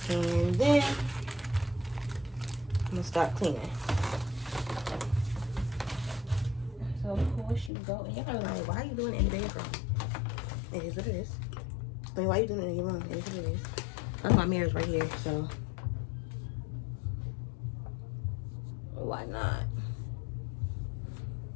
and then I'm gonna start cleaning. So of course you go, and y'all are like, why are you doing it in the bedroom? It is what it is. I mean, why are you doing it in your room? It is what it is. That's my mirrors right here, so why not?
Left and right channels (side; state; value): right; drops out; at 7.7 s